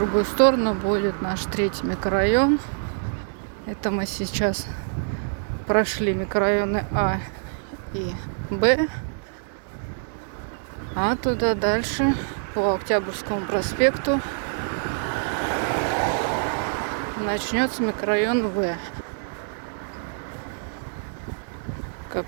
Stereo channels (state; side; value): silent; left; digital silence